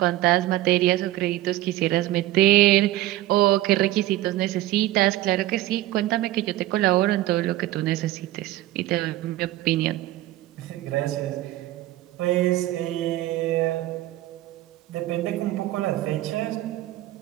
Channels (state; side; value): quieter; left; 15.9 dB